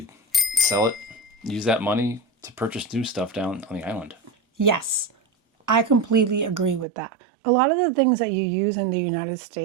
sell it, use that money to purchase new stuff down on the island. Yes, I completely agree with that. A lot of the things that you use in the United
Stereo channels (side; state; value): left; drops out; at 6.9 s